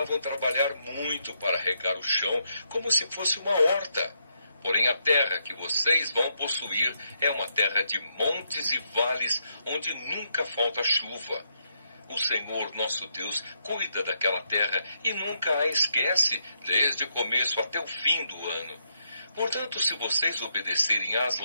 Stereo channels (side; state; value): both; inverted; correlation -0.78